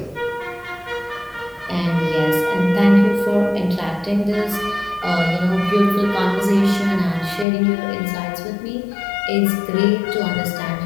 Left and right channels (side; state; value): right; drops out; at 7.5 s